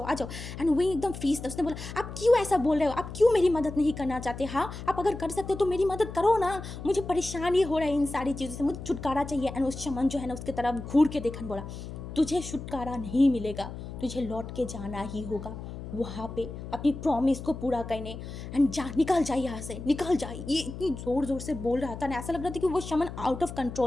एंड विंग एकदम फ्रीज था, उसने बोला आप क्यों ऐसा बोल रहे हो, आप क्यों मेरी मदद नहीं करना चाहते, हाँ आप अगर कर सकते हो तो मेरी मदद करो ना, मुझे परेशानी हो रहा है इन सारी चीज़ों से, मुझे छुटकारा चाहिए। एंड उस शमन जो है ना उसकी तरफ घूर के देखा, बोला तुझे छुटकारा नहीं मिलेगा, तुझे लौट के जाना ही होगा वहाँ पे अपनी प्रॉमिस को पूरा करने। एंड निकल जाए यहाँ से, निकल जाए। ये इतनी ज़ोर ज़ोर से बोल रहा था ना, ऐसा लग रहा था कि वो शमन आउट ऑफ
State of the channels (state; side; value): noise; left; hum, 10 dB below the sound